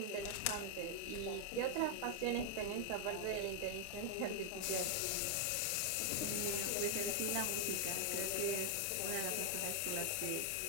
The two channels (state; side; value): different; both; correlation 0.00